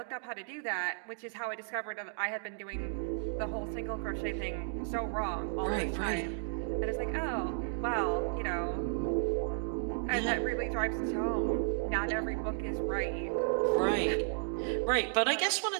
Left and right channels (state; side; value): silent; left; digital silence